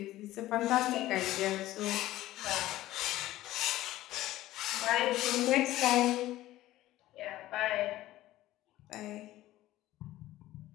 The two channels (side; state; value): right; quieter; 15.5 dB